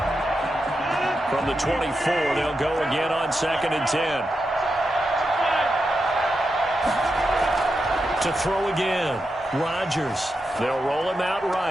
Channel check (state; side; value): normal; both; correlation 0.87